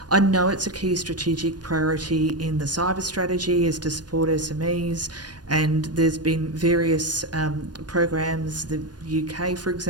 I know it's a key strategic priority in the cyber strategy is to support SMEs, and there's been various programs. The UK, for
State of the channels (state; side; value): late; left; 0.69 ms